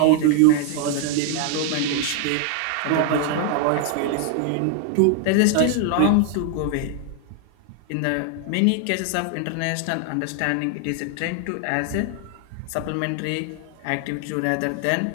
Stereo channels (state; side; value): different; both; correlation 0.00